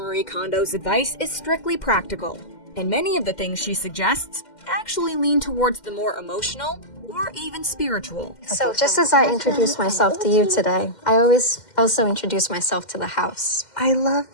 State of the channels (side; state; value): right; late; 2.1 ms